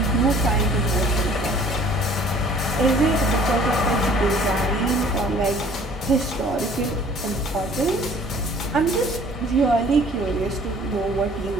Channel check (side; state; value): both; normal; correlation 0.53